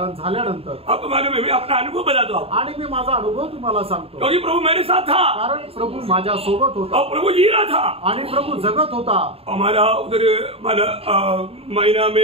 झाल्यानंतर आपको मालूम है, मैं अपना अनुभव बताता हूँ. आणि मी माझा अनुभव तुम्हाला सांगतो. क्योंकि प्रभु मेरे साथ था, कारण प्रभु माझ्या सोबत होता और प्रभु जी रहा था, आणि प्रभु जगत होता. हमारा उधर महीना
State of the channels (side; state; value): left; late; 0.28 ms